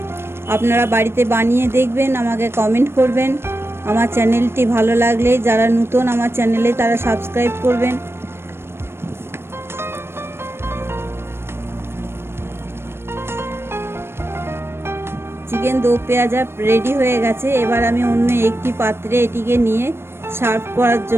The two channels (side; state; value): left; late; 0.12 ms